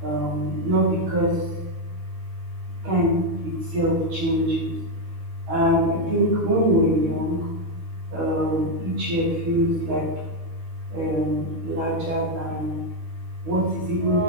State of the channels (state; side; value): late; left; 13 ms